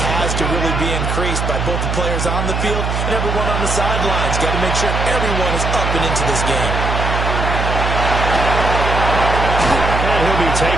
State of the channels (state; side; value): noise; right; hum, 1 dB below the sound